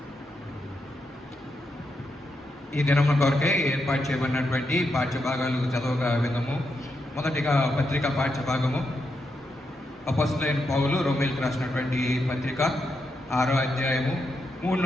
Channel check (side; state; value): both; normal; correlation 0.83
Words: ఈ దినమున కొరకే ఏర్పాటు చేయబడినటువంటి పాఠ్యభాగాలు చదవగా విధము. మొదటిగా పత్రిక పాఠ్యభాగము. అపొస్తలుడైన పౌలు రోమీయులకు రాసినటువంటి పత్రిక 6వ అధ్యాయము 3